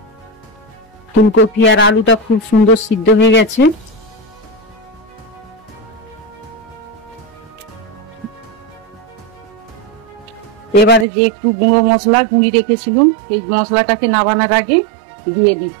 ফুলকপি আর আলুটা খুব সুন্দর সিদ্ধ হয়ে গেছে। এবারে যে একটু গুঁড়ো মশলা গুঁড়ি রেখেছিলাম সেই মশলাটাকে নামানোর আগে দিয়ে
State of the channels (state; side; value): drops out; left; at 11.1 s